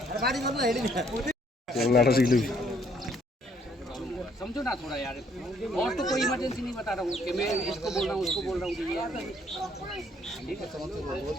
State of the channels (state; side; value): normal; both; correlation 0.66